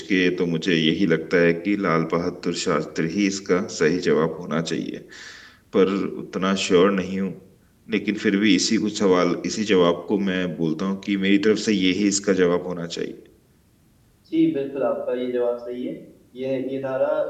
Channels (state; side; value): identical; both; correlation 1.00